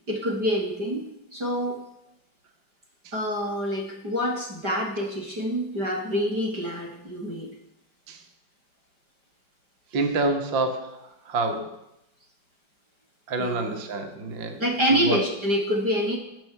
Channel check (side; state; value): left; late; 5.0 ms